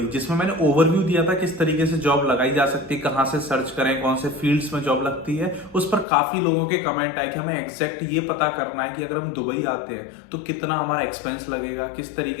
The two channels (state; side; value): drops out; right; at 6.1 s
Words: जिसमें मैंने ओवरव्यू दिया था किस तरीके से जॉब लगाई जा सकती है, कहां से सर्च करें, कौन से फील्ड्स में जॉब लगती है। उस पर काफी लोगों के कमेंट आए कि हमें एग्जैक्ट ये पता करना है कि अगर हम दुबई आते हैं तो कितना हमारा एक्सपेंस लगेगा, किस